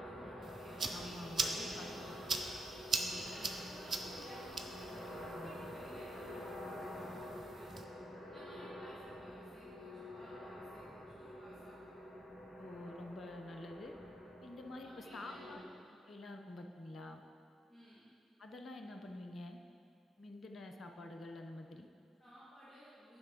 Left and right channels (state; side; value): normal; both; correlation 0.80